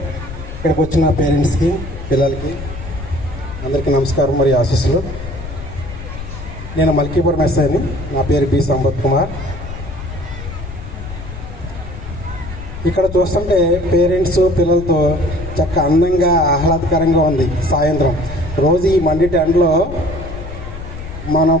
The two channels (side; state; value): left; noise; rumble, 10 dB below the sound